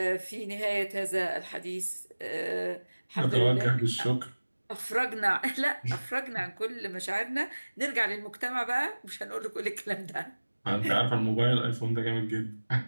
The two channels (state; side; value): inverted; both; correlation -1.00